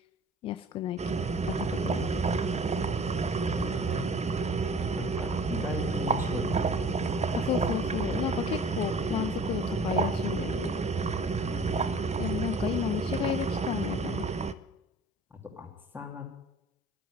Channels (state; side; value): normal; both; correlation 0.46